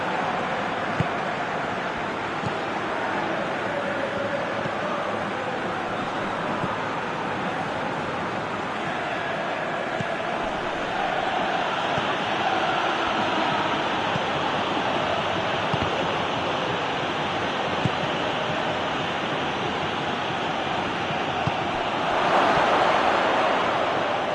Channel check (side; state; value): both; identical; correlation 1.00